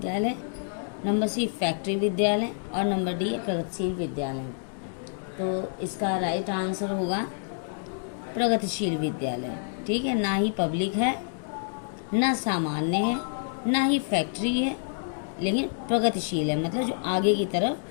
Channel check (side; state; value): right; silent; digital silence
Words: नंबर सी फैक्ट्री विद्यालय और नंबर डी है प्रगतिशील विद्यालय। तो इसका राइट आंसर होगा प्रगतिशील विद्यालय। ठीक है, ना ही पब्लिक है ना सामान्य है ना ही फैक्ट्री है, लेकिन प्रगतिशील है, मतलब जो आगे की